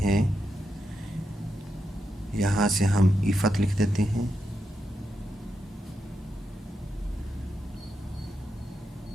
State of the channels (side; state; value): both; normal; correlation 0.85